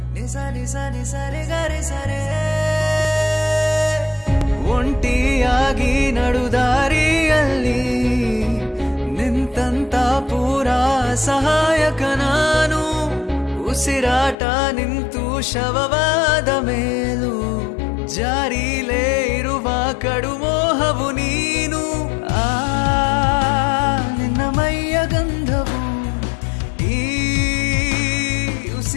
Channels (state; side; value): drops out; right; at 14.4 s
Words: nisa nisa nisa re ga re sa re ಒಂಟಿಯಾಗಿ ನಡುದಾರಿಯಲ್ಲಿ ನಿಂತಂತ ಪೂರಾ ಸಹಾಯಕ ನಾನು ಉಸಿರಾಟ ನಿಂತು ಶವವಾದ ಮೇಲೂ ಜಾರಿಲೇ ಇರುವ ಕಡುಮೋಹವು ನೀನು ನಿನ್ನ ಮೈಯ ಗಂಧವು ಈ